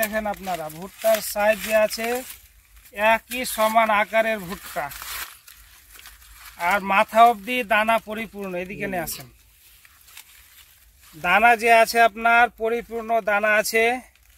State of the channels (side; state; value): both; identical; correlation 1.00